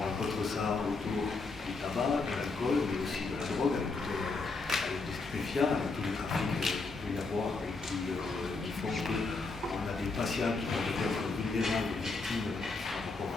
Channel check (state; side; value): quieter; right; 3.9 dB